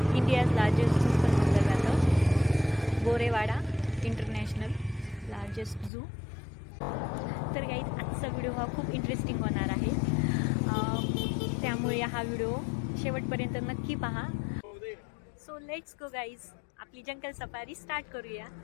इंडियाज लार्जेस्ट झू पण म्हटलं जातं. Gorewada international largest zoo. तर गाईज आजचा व्हिडिओ हा खूप इंटरेस्टिंग होणार आहे, त्यामुळे हा व्हिडिओ शेवटपर्यंत नक्की पहा. सो लेट्स गो गाईज, आपली जंगल सफारी स्टार्ट करूया.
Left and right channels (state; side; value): drops out; right; at 5.9 s